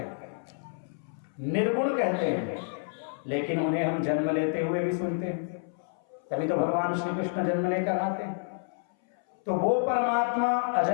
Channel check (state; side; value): silent; right; 59 dB below the other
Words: निर्गुण कहते हैं, लेकिन उन्हें हम जन्म लेते हुए भी सुनते हैं। तभी तो भगवान श्री कृष्ण जन्म लेकर आते हैं। तो वो परमात्मा